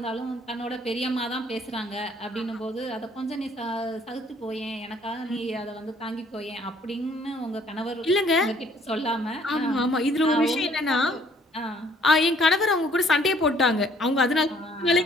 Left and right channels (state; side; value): normal; both; correlation 0.61